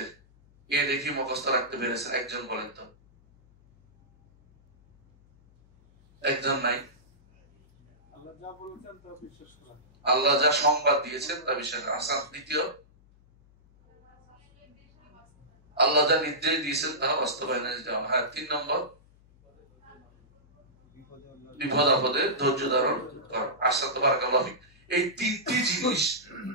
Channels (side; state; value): left; noise; hum, 29 dB below the sound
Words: এ দেখি মুখস্থ রাখতে পেরেছেন? একজন বলেন তো। একজন নাই। আল্লাহ যা সংবাদ দিয়েছেন তা বিশ্বাস করা। আচ্ছা, দ্বিতীয়, আল্লাহ যা নির্দেশ দিয়েছেন তা বাস্তবায়নে যাওয়া। হ্যাঁ, 3 নম্বর বিপদ আপদে ধৈর্য ধারণ করা। আশা তো বারাকাল্লাহ ফিক। এই 3টি জিনিস